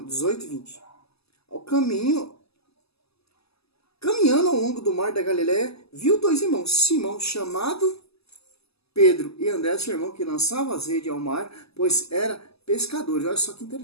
18 e 20. Ao caminho, caminhando ao longo do mar da Galileia, viu 2 irmãos, Simão, chamado Pedro, e André, seu irmão, que lançava as redes ao mar, pois era pescadores. Olha só que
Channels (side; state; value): right; late; 0.78 ms